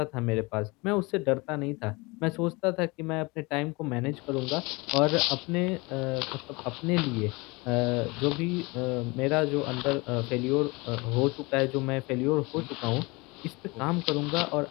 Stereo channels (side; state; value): right; quieter; 25.7 dB